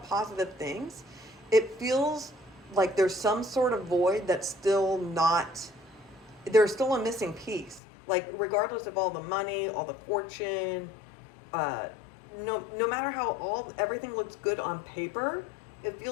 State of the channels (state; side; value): drops out; right; at 7.8 s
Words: positive things, it feels like there's some sort of void that's still not, there's still a missing piece. Like regardless of all the money, all the fortune, no matter how everything looks good on paper, it